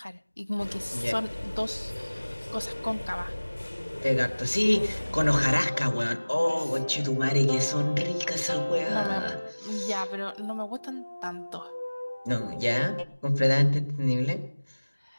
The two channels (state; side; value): inverted; both; correlation -1.00